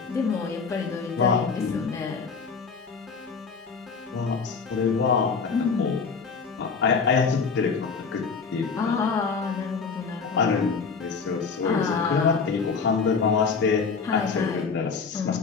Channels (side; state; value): right; quieter; 5.3 dB